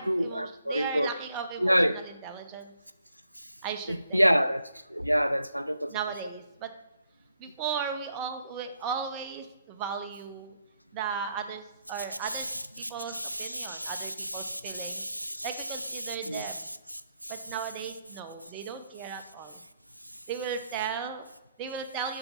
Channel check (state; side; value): inverted; both; correlation -0.78